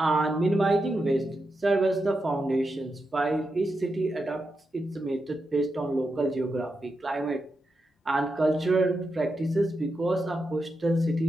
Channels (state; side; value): normal; both; correlation 0.87